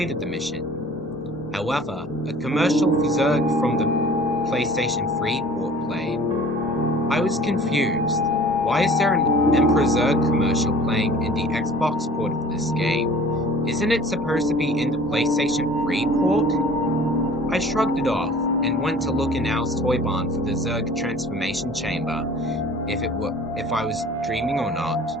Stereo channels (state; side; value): normal; both; correlation 0.47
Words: the mission. However, a commercial for Zurg from the PlayStation 3 port played. I was confused. Why is there an Emperor Zurg commercial playing in the Xbox port of this game? Isn't it supposed to be in the PlayStation 3 port? I shrugged it off and went to look in Al's toy barn for the Zurg transformation chamber, if I was dreaming or not,